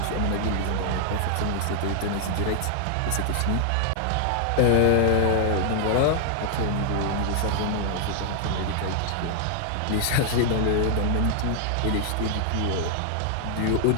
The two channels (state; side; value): different; both; correlation 0.00